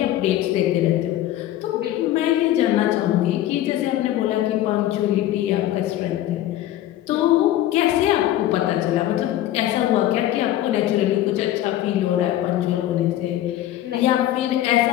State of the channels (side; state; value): right; quieter; 13.5 dB